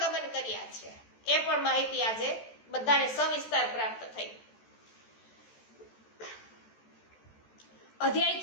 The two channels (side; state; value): right; late; 14 ms